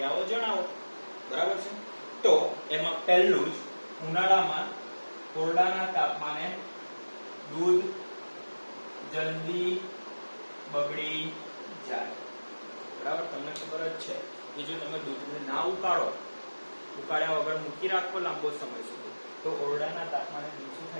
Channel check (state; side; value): inverted; both; correlation -1.00